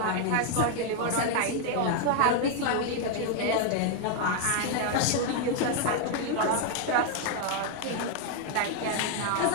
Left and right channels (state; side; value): different; both; correlation 0.00